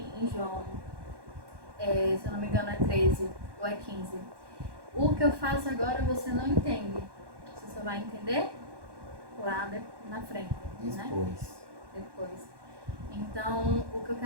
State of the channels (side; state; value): left; late; 1.1 ms